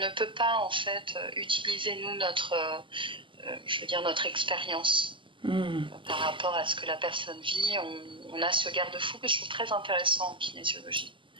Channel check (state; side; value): late; left; 0.24 ms